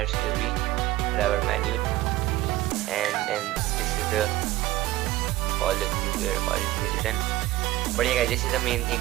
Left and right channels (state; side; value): quieter; left; 16.5 dB